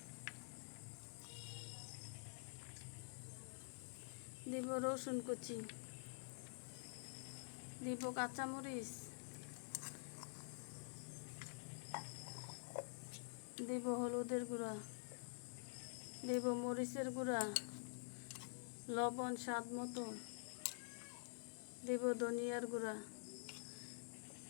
দিব রসুন কুচি, দিব কাঁচামরিচ, দিব হলুদের গুঁড়া, দিব মরিচের গুঁড়া, লবণ স্বাদ মতো, দিব ধনিয়ার গুঁড়া,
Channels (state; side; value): silent; right; digital silence